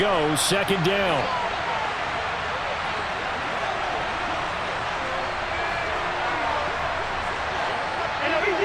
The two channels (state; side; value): identical; both; correlation 1.00